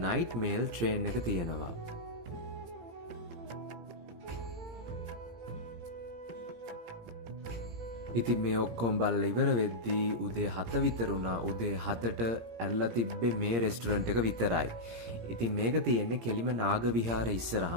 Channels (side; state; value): left; late; 17 ms